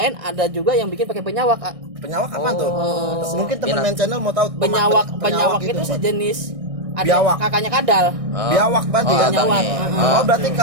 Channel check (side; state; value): left; late; 1.6 ms